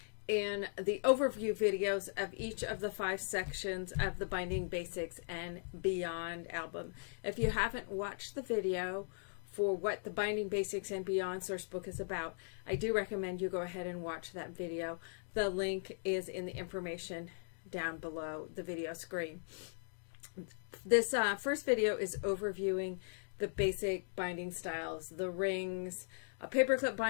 in the overview videos of each of the 5 sections of the Binding Basics and Beyond album. If you haven't watched the video for what the Binding Basics and Beyond source book is about, I do recommend you go ahead and watch that video. The link is in the information down below the video screen. This first video is overviewing the basic binding styles, the rings, a paperclip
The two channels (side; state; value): right; silent; digital silence